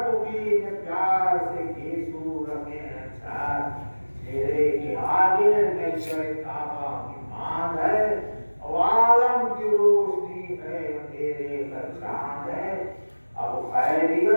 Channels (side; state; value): both; inverted; correlation -1.00